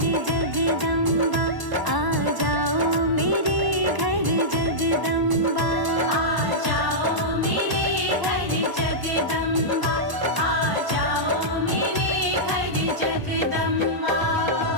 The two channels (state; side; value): late; left; 1.0 ms